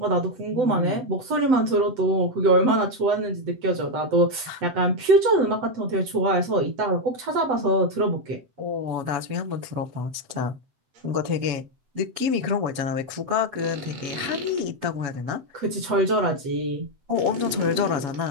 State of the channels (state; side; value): late; left; 7.8 ms